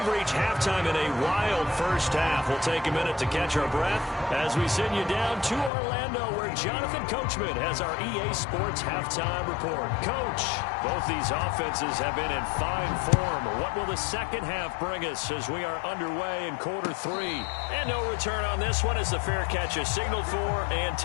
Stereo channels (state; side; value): drops out; right; at 5.7 s